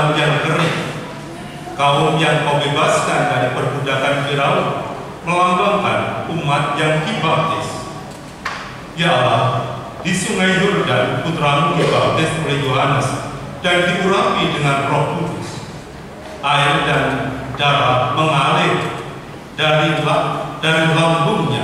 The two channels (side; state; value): both; identical; correlation 1.00